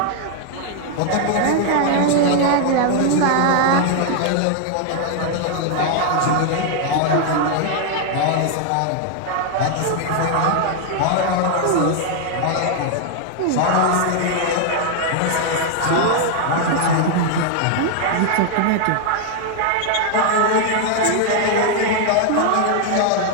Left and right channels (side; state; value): both; different; correlation 0.00